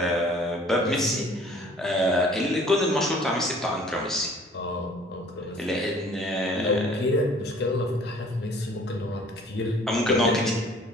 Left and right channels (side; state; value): both; normal; correlation 0.53